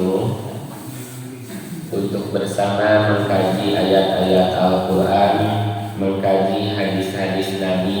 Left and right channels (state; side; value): identical; both; correlation 1.00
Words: untuk bersama mengkaji ayat-ayat Al-Quran, mengkaji hadis-hadis